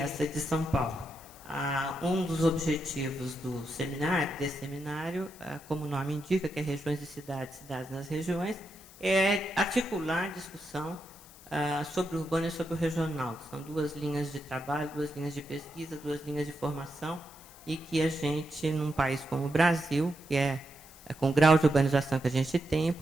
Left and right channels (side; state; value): left; noise; hiss, 21 dB below the sound